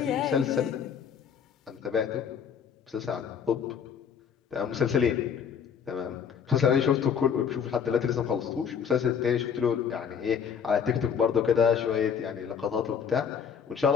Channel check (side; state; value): right; quieter; 7.4 dB